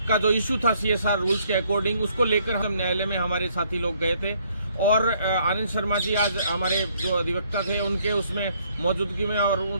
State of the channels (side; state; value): both; inverted; correlation -0.66